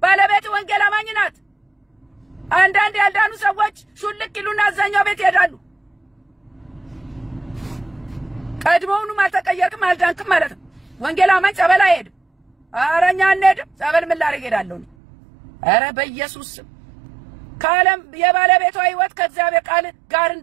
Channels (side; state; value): left; drops out; at 15.0 s